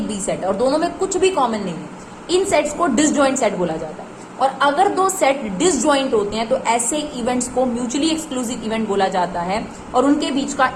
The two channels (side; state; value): both; identical; correlation 1.00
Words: बी सेट है और दोनों में कुछ भी कॉमन नहीं है। इन सेट्स को डिसजॉइंट सेट बोला जाता है। और अगर 2 सेट डिसजॉइंट होते हैं तो ऐसे इवेंट्स को म्यूचुअली एक्सक्लूसिव इवेंट बोला जाता है, और उनके बीच का